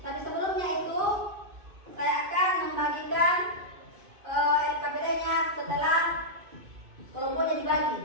Tapi sebelumnya itu saya akan membagikan LKPD-nya setelah kelompoknya dibagi.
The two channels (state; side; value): late; left; 2.5 ms